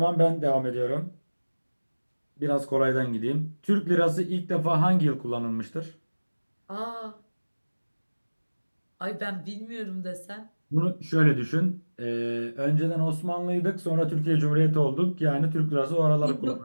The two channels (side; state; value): both; inverted; correlation -1.00